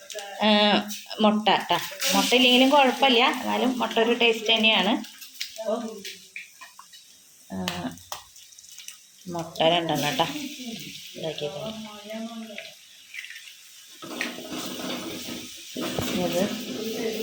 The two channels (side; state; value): both; identical; correlation 1.00